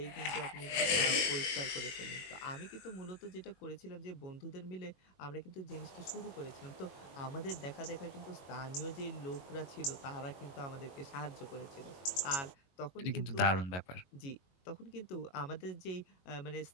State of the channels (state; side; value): late; right; 22 ms